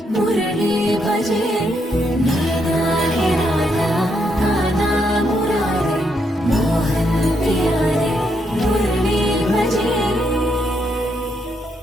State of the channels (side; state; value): both; normal; correlation 0.78